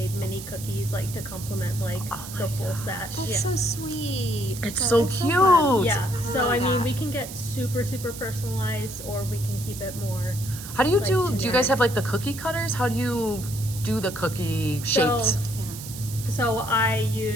mini cookies like to complement like the full set. That's Yeah. so sweet. It's So so it's so cute. fun. Yeah. So I mean, that. we can get super personalized, or we can keep it more. How do you Like do you generic. guys have like the cookie cutters? How do you do the cookie shapes? yeah. So I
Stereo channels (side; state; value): right; noise; hiss, 12 dB below the sound